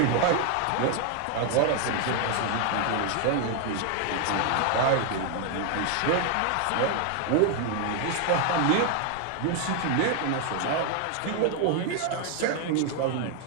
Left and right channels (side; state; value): both; different; correlation 0.00